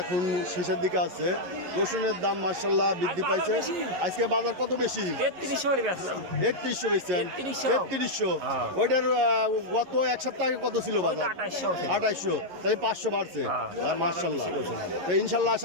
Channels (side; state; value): left; late; 11 ms